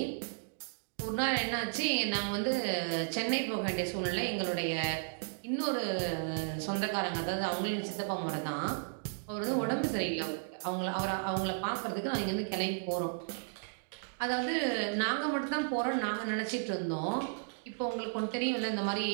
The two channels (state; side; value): silent; left; digital silence